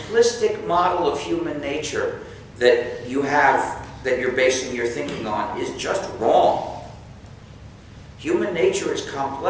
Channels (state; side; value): identical; both; correlation 1.00